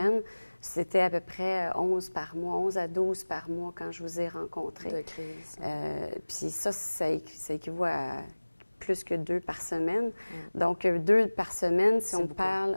c'était à peu près 11 par mois, 11 à 12 par mois quand je vous ai rencontré. De crise. Puis ça équivaut à plus que 2 par semaine. Donc, 2 par semaine, si on parle,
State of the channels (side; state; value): both; inverted; correlation -1.00